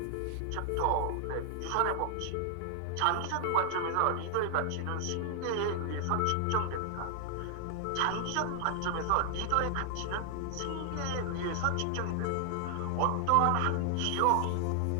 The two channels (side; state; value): both; different; correlation 0.00